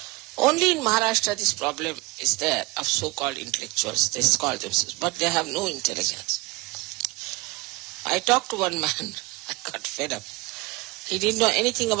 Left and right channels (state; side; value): quieter; left; 22.5 dB